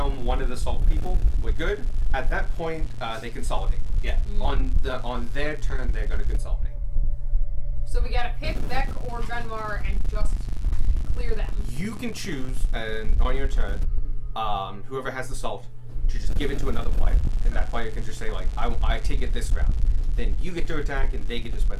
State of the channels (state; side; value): identical; both; correlation 1.00